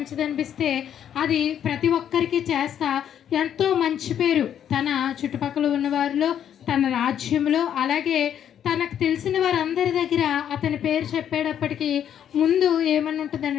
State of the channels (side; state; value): right; quieter; 9.6 dB